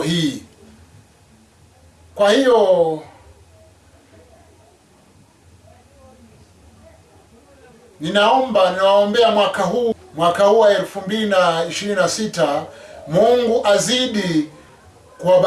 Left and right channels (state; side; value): identical; both; correlation 1.00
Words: hii. Kwa hiyo ninawaombea mwaka huu wa 2026, Mungu azidi